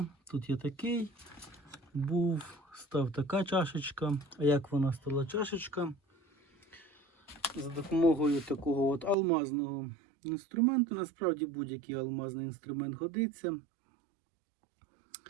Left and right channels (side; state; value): left; drops out; at 9.2 s